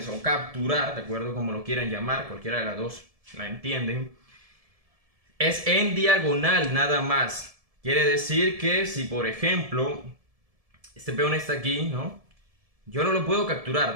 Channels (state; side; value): late; left; 1.7 ms